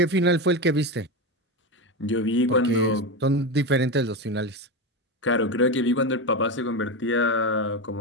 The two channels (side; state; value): both; normal; correlation 0.16